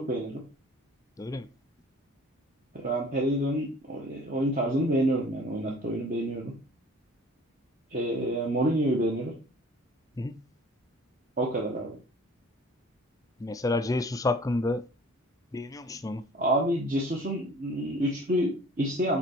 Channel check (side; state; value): both; normal; correlation 0.49